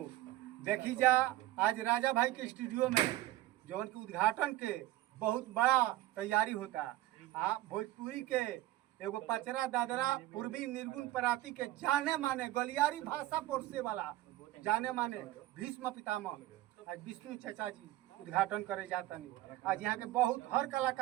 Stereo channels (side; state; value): left; quieter; 15.9 dB